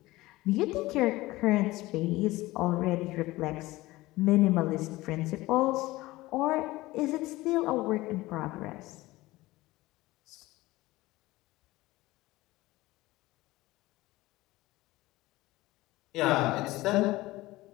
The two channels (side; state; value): right; quieter; 18.9 dB